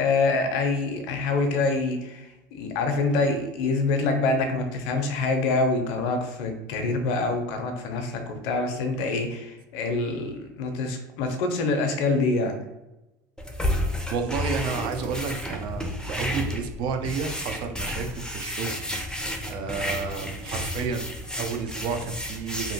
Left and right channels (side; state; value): both; normal; correlation 0.33